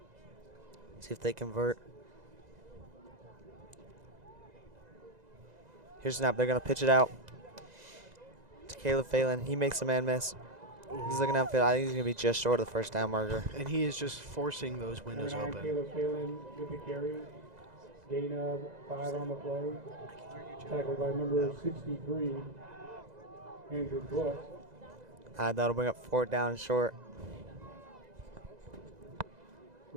See if they convert. Here's snap. They're going to pitch it out to Caleb Phelan. He makes a man miss. He's looking downfield. I think he's going to be just short of the first down marker. And he is just forcing those windows Number 9, open. Caleb Phelan with the carry. Gain of 5 on the play. Tackled by number 63, Andrew Bush. That'll bring up 4th down and short.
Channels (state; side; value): late; left; 2.0 ms